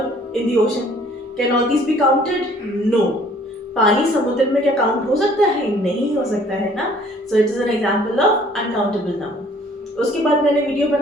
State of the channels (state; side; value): normal; both; correlation 0.57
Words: in the ocean, can all these be counted? No. पानी समुद्र में क्या काउंट हो सकता है? नहीं हो सकता है ना। So it is an example of uncountable noun. उसके बाद मैंने वीडियो